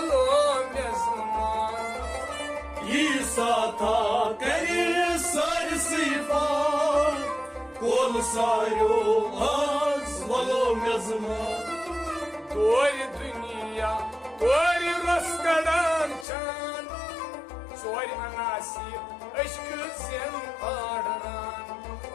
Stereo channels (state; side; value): drops out; right; at 16.2 s